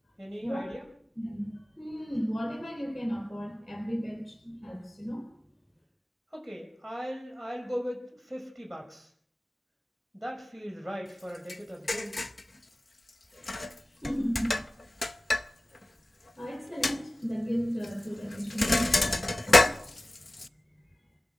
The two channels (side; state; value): both; normal; correlation 0.96